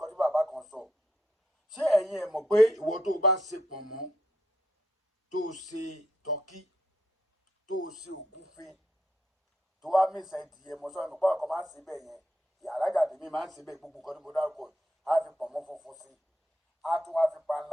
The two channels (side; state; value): both; normal; correlation 0.78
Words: tí bàbá kan sọ. Ṣé ẹ̀yin ẹ̀ mọ̀ pé ìwọ tó bá ṣe pọ̀nmọ́, tó ṣe tọ́kí, tó ṣe ògúnfe, tó wá mísà ìdìyẹ mọ́ sọ́nà pọ̀ ọkọ̀ máa ń ṣe bẹ́ẹ̀ yẹn. Ìyàlájà tèmi máa ń ṣe bẹ́ẹ̀ gbogbo nǹkan tí mo dárúkọ yìí. Á fi pọ̀nmọ́ funfun sí i. Á tún wá fi